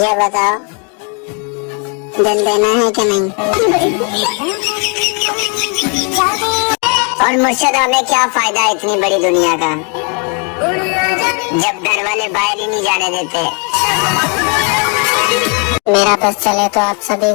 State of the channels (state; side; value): quieter; right; 36.7 dB